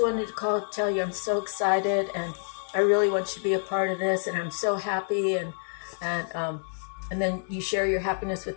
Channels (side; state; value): right; silent; digital silence